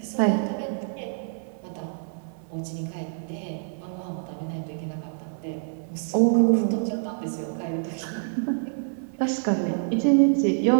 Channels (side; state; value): left; silent; 60 dB below the other